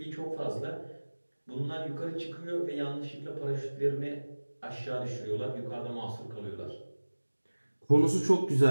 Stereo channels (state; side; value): inverted; both; correlation -1.00